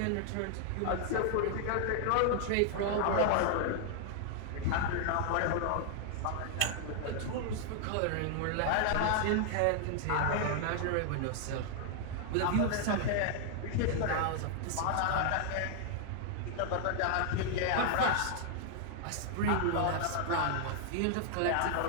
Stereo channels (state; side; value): different; both; correlation 0.00